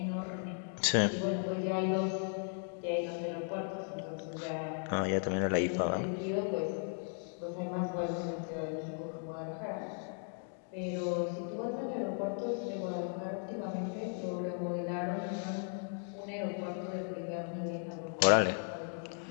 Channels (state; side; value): silent; right; 54 dB below the other